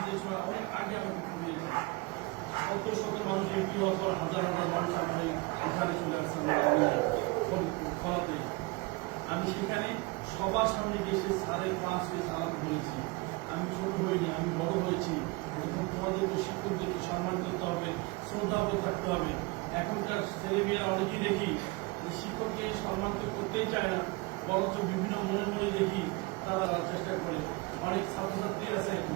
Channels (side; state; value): left; quieter; 25.0 dB